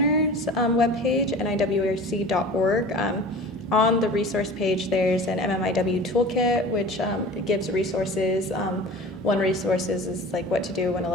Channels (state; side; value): normal; both; correlation 0.39